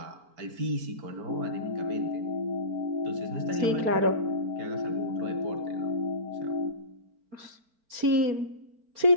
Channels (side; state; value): left; late; 4.5 ms